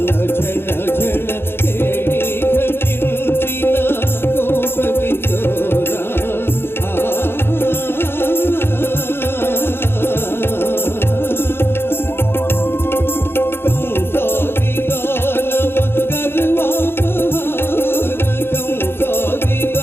ఝణ ఝణ. కేళి ఘటించిన గోప కిశోరా. కంసాది దానవ గర్వాపహార. కంసాది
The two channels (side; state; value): right; late; 0.11 ms